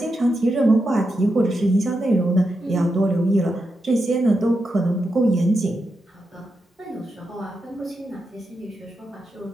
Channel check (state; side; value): normal; both; correlation 0.86